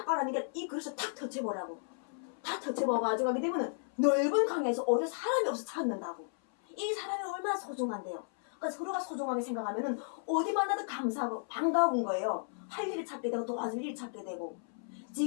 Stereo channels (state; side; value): silent; right; 55 dB below the other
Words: 이 그릇을 탁 터쳐보라고. 다 터쳐봐가지고 하게 되면은 넓은 강에서 오히려 사람이 없어 찾는다고. 이 사람이 얼마나 소중한데요. 그러니까 서로가 소중하게 생각하면은 어디 만나도 감사하고 반가운 거예요. 할 일을 찾게 되고 도와줄 일을 찾게 되고.